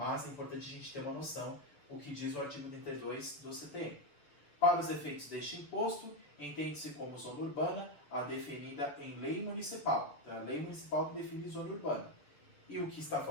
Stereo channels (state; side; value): late; right; 6.9 ms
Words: é importante a gente ter uma noção o que diz o artigo 32 do CTN. Para os efeitos deste imposto, entende-se como zona urbana a definida em lei municipal. Então, é a lei municipal que define zona urbana. E o que está